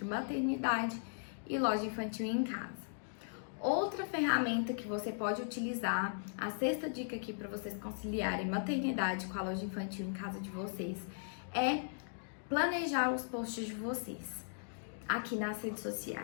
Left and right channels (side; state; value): right; silent; digital silence